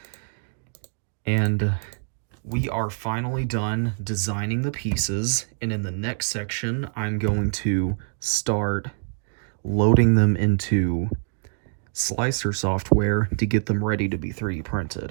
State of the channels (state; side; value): silent; left; digital silence